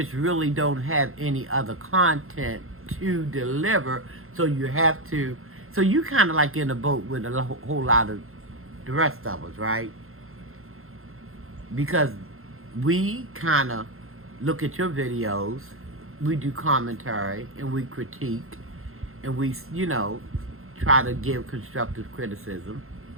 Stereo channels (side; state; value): left; late; 0.61 ms